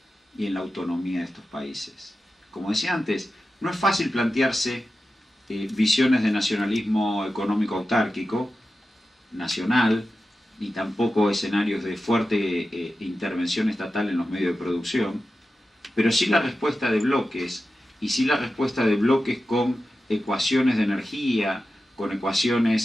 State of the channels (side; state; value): both; normal; correlation 0.93